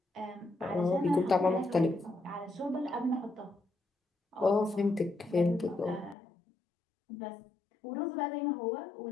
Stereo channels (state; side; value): drops out; right; at 6.2 s